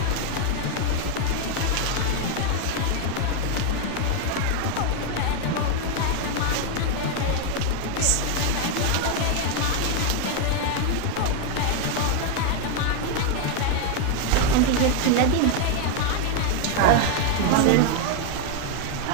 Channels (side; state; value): both; different; correlation 0.01